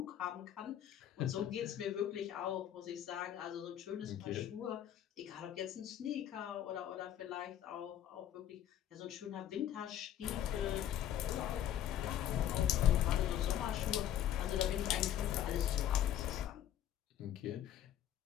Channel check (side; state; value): right; quieter; 11.0 dB